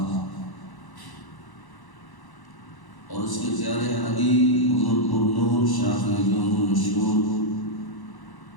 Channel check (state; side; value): late; right; 1.0 ms